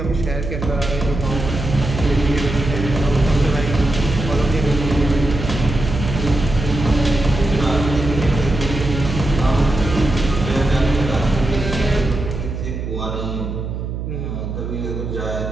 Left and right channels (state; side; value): noise; right; hum, 5 dB below the sound